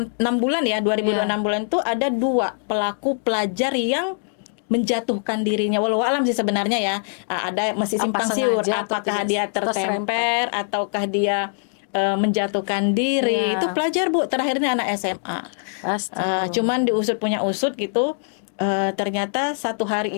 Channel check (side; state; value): right; silent; digital silence